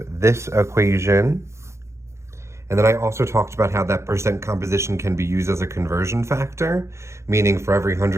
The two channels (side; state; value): left; late; 0.14 ms